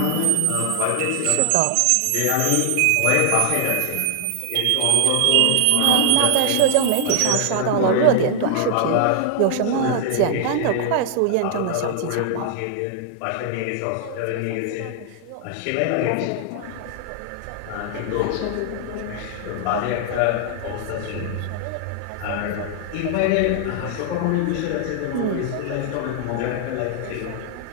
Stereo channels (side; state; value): both; different; correlation 0.00